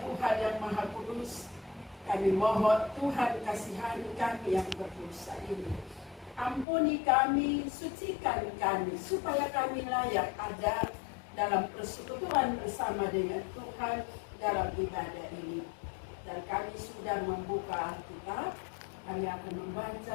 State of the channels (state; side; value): drops out; right; at 6.7 s